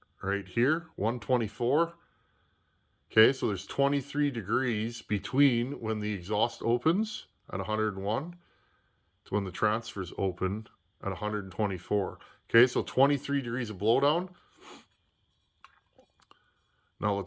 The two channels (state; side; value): identical; both; correlation 1.00